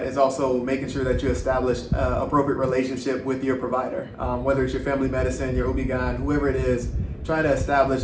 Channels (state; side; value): identical; both; correlation 1.00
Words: is also making sure that you establish an appropriate relationship with your provider. Whether it's your family medicine, your OB-GYN, whoever it is, try to establish